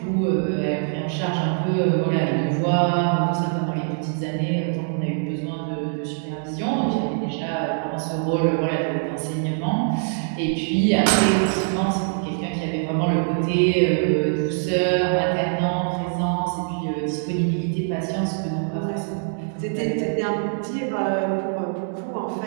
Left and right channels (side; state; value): left; silent; digital silence